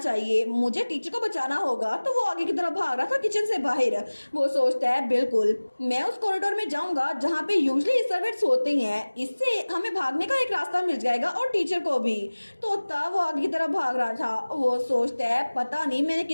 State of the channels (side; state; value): both; inverted; correlation -1.00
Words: मुझे टीचर को बचाना होगा। तो वो आगे की तरफ भाग रहा था किचन से बाहर। वो सोचता है बिल्कुल मैं उस कॉरिडोर में जाऊंगा जहाँ पे यूजली सर्वेंट्स होते हैं, इससे हमें भागने का एक रास्ता मिल जाएगा और टीचर को भी। तो तब वो आगे की तरफ भाग रहा था। वो सोचता है पता नहीं मैंने